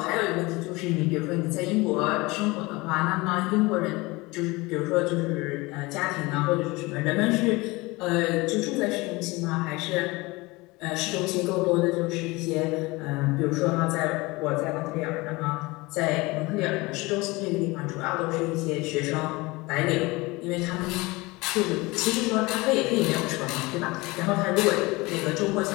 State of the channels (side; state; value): right; quieter; 23.0 dB